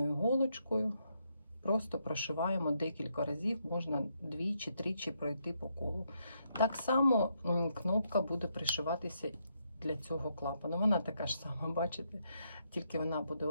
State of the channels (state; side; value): inverted; both; correlation -0.77